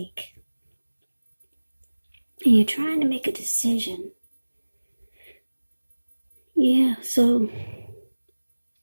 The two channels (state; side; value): inverted; both; correlation -1.00